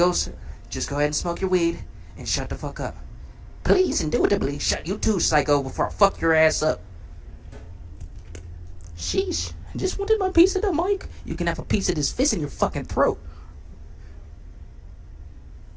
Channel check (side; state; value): both; identical; correlation 1.00